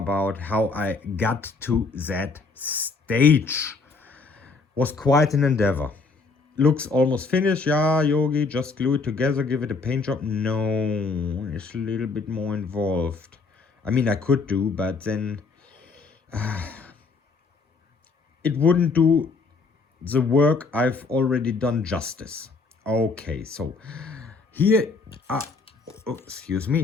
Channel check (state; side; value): quieter; right; 4.2 dB